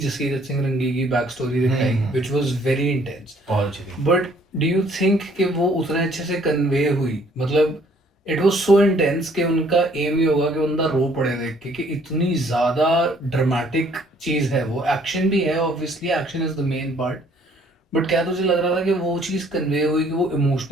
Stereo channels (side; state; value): both; normal; correlation 0.61